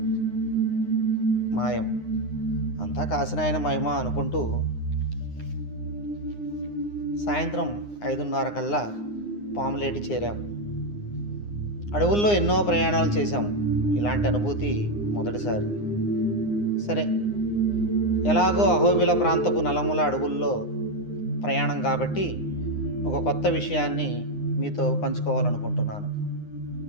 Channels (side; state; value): right; late; 9.7 ms